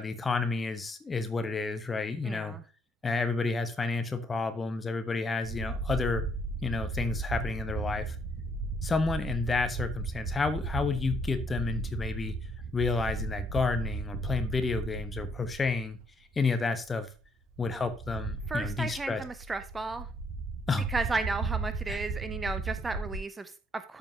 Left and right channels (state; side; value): normal; both; correlation 0.71